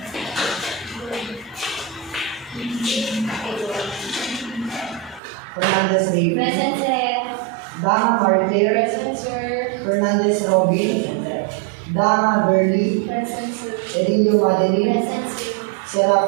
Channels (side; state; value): left; drops out; at 5.2 s